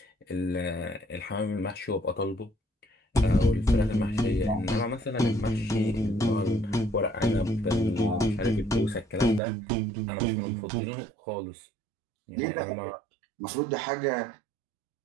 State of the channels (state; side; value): drops out; left; at 9.4 s